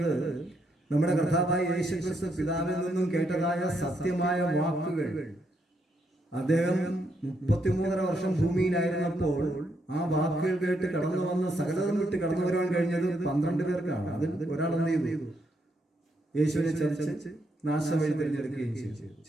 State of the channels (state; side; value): normal; both; correlation 0.77